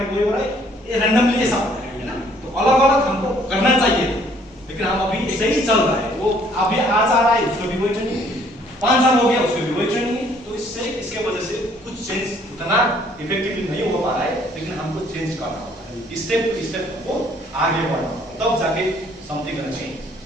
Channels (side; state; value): both; normal; correlation 0.62